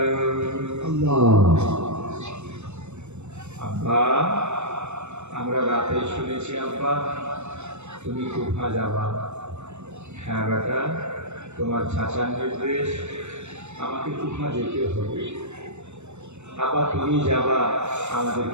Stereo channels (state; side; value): late; left; 0.82 ms